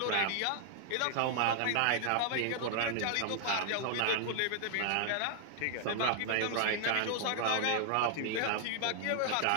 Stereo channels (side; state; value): both; different; correlation 0.00